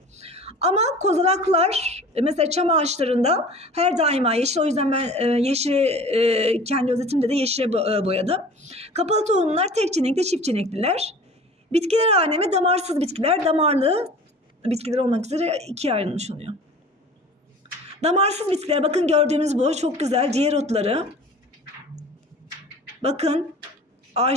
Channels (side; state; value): both; normal; correlation 0.43